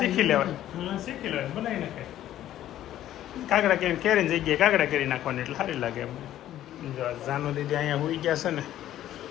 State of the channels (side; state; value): right; quieter; 12.6 dB